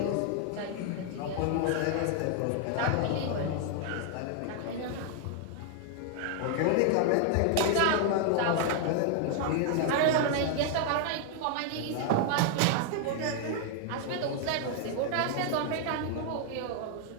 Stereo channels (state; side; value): different; both; correlation 0.00